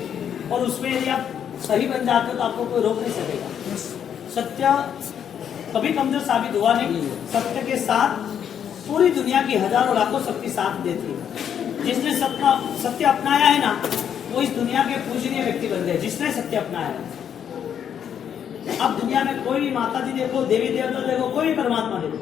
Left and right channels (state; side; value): quieter; right; 8.7 dB